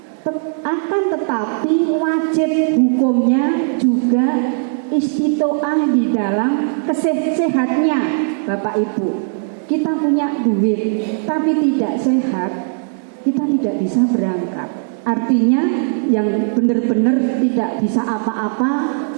akan tetapi wajib hukumnya juga istitoah di dalam sehatnya Bapak Ibu. Kita punya duit tapi tidak sehat, kita tidak bisa berangkat. Artinya yang benar-benar tidak bisa apa-apa,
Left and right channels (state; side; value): silent; left; digital silence